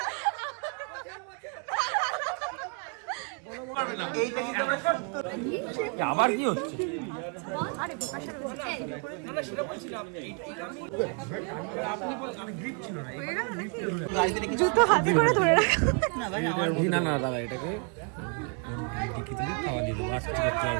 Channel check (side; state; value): left; quieter; 38.3 dB